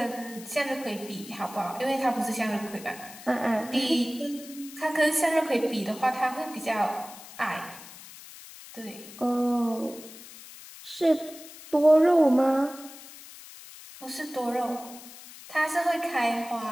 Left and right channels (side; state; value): left; noise; hiss, 17 dB below the sound